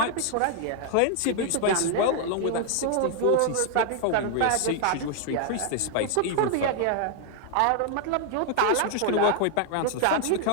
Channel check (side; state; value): both; different; correlation 0.00